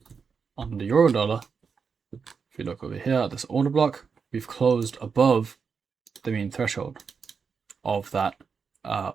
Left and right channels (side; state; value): left; quieter; 5.7 dB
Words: on the euro dollar, if you look over here at this order block, we've closed above the mean threshold of that